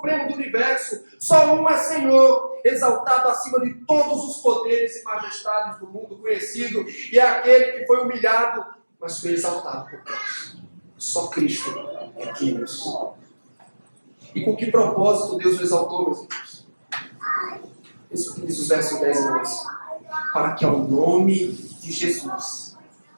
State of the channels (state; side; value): inverted; both; correlation -1.00